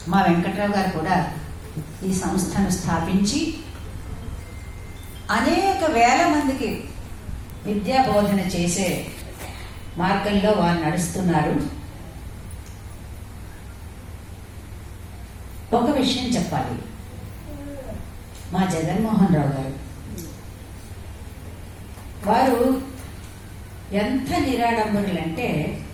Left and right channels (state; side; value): identical; both; correlation 1.00